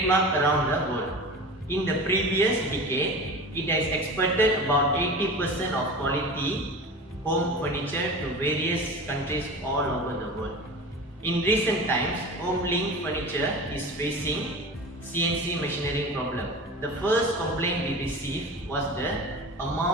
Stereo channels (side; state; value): both; normal; correlation 0.33